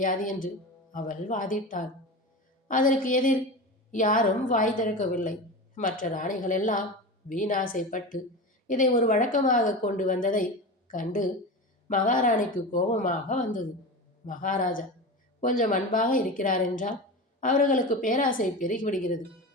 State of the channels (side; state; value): both; normal; correlation 0.26